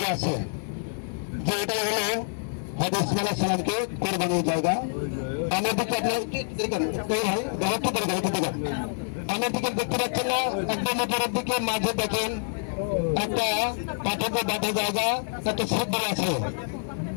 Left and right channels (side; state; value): right; silent; 56 dB below the other